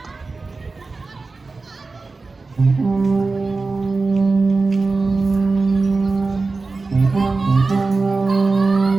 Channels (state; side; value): quieter; left; 3.9 dB